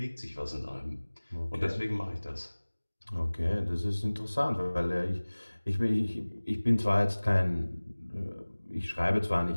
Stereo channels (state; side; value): inverted; both; correlation -1.00